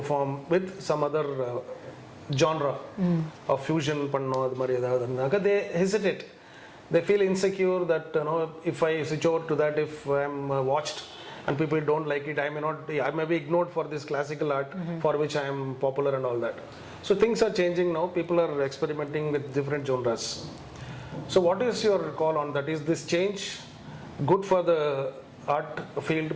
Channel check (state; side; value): identical; both; correlation 1.00